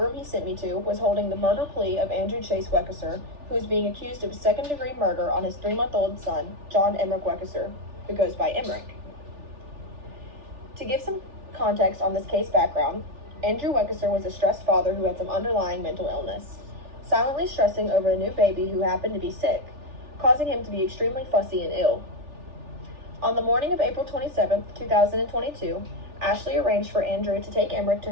he sent me to was holding the murder plea of Andrew Chase Weckesser, who is being accused of second-degree murder on his 3-month-old son, John Emmerich Weckesser, who goes by Emmerich. To give some context on this case background, Andrew Weckesser was a stressed father who had some underlying mental illness, silently stressing over a new baby who happened to be sick, causing him to be extremely fussy and ill. On the morning of April 27, 2022, Ashley arranged for Andrew to take Emmerich to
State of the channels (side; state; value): left; late; 3.4 ms